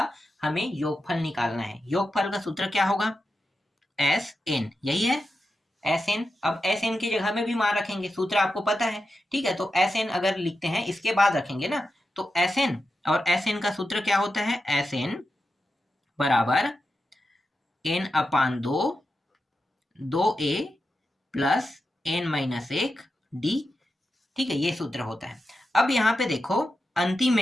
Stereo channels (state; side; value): normal; both; correlation 0.89